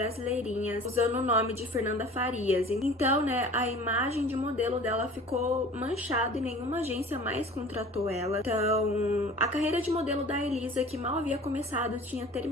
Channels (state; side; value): normal; both; correlation 0.43